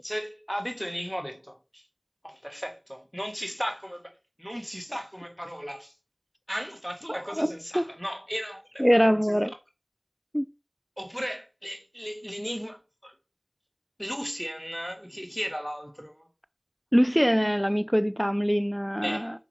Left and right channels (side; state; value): both; identical; correlation 1.00